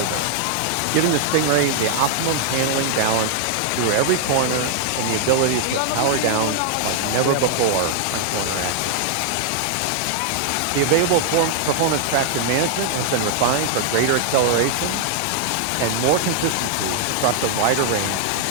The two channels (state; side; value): different; both; correlation -0.01